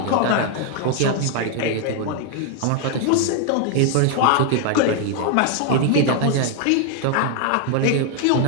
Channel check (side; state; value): both; different; correlation 0.00